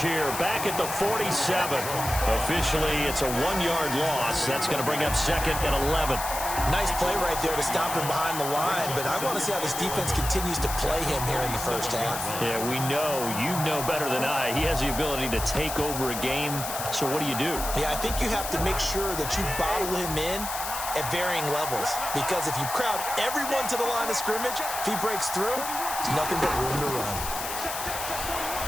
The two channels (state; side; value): noise; left; hiss, 6 dB below the sound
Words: here, back at the 47. Officially, it's a 1-yard loss. That's going to bring up 2nd and 11. Nice play right there to stop him behind the line, but I want to see how this defense continues to play him here in the first half. Yeah, we know, you know better than I, he has the ability to take over a game, so what do you do? Yeah, I think you have to make sure that you bottle him in at varying levels, because if you crowd everyone to the line of scrimmage, if he breaks through, it's nothing but room to run.